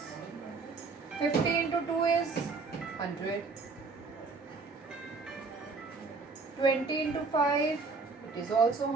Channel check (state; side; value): quieter; left; 4.3 dB